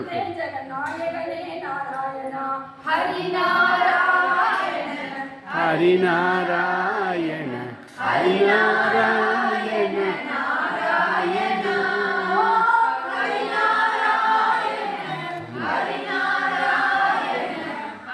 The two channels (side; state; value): both; identical; correlation 1.00